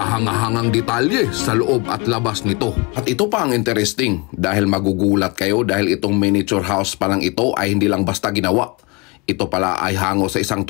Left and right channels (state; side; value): quieter; right; 28.3 dB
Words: detalye sa loob at labas nito. At ito pa ang interesting dahil magugulat kayo dahil itong miniature house pa lang ito ay hindi lang basta ginawa. Ito pala ay hango sa isang